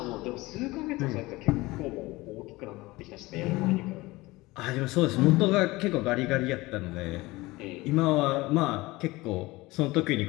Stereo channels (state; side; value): quieter; right; 20.7 dB